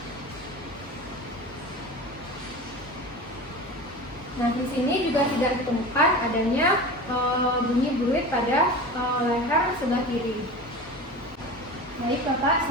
Nah, di sini juga tidak ditemukan adanya bunyi berit pada leher sebelah kiri. Baik, Bapak,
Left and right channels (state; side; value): normal; both; correlation 0.32